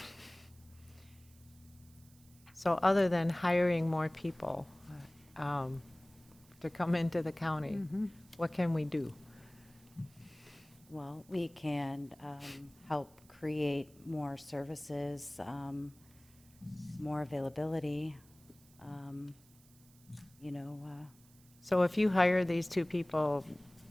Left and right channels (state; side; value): noise; right; hiss, 27 dB below the sound